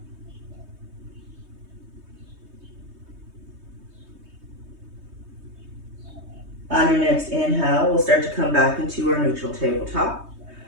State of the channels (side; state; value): left; late; 3.2 ms